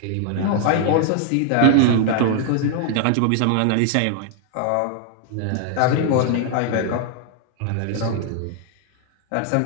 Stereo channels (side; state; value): both; different; correlation 0.00